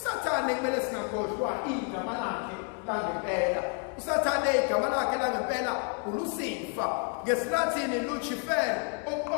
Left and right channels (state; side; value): quieter; right; 36.3 dB